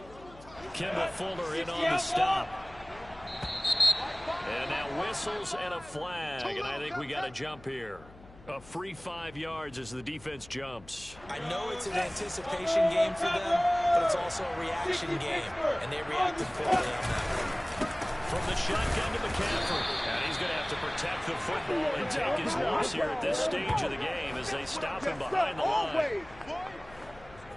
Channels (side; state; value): left; noise; hum, 21 dB below the sound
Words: Kimball Fuller in on the stop. And now whistles and a flag, and I think we got a jump here. A free 5 yards as the defense jumps. I know it's an anticipation game for them, but it's also a reaction game, and they reacted quickly on that. From the shotgun to McCaffrey. And he's going to have to protect the football and take his loss here at this stage of the game as they stop him behind the line.